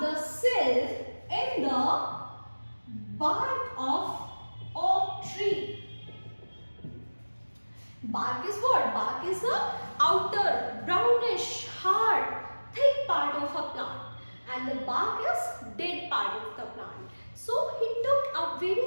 the cell in the bark of oak tree. Bark is what? Bark is the outer, brownish, hard, thick part of a plant. And the bark is dead part of the plant. So he took a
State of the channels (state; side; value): inverted; both; correlation -1.00